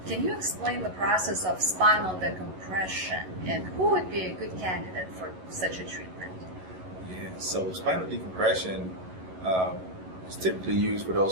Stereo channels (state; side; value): late; left; 11 ms